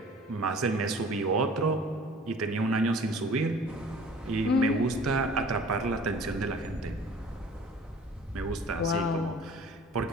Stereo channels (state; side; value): normal; both; correlation 0.47